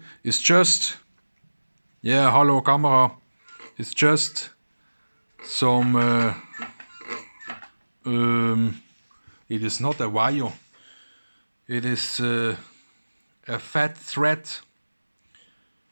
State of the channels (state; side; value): inverted; both; correlation -1.00